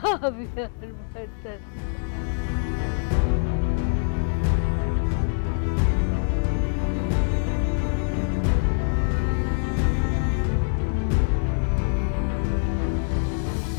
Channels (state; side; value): silent; right; digital silence